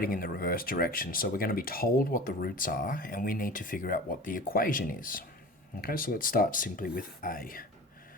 in the reverse direction. So we're going to be told what the roots are, and we need to figure out what the equation is. Okay, so let's start simply with A.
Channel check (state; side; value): normal; both; correlation 0.38